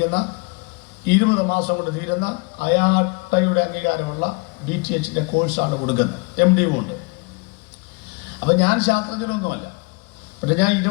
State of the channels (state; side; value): quieter; right; 29.1 dB